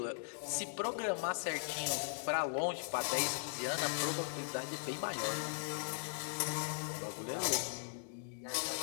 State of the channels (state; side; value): silent; right; digital silence